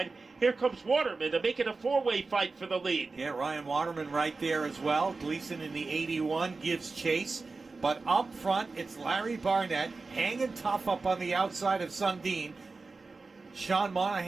Here comes Waterman to make it a four-way fight for the lead. Yeah, Ryan Waterman right there as well. Gleason in the 81 gives chase. But up front, it's Larry Barnett hanging tough up on the outside of Sundin. Sean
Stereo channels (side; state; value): left; quieter; 3.9 dB